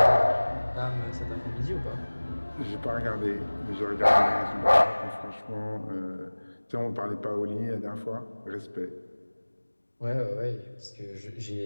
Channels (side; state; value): both; inverted; correlation -1.00